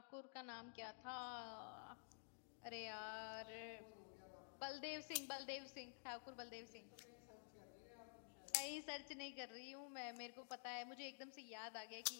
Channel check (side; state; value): right; silent; digital silence